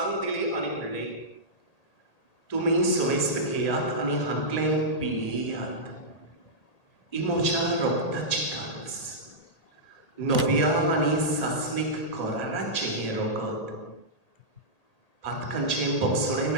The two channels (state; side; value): late; right; 1.8 ms